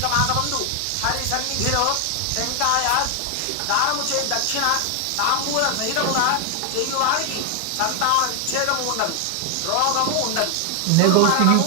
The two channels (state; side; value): different; both; correlation 0.00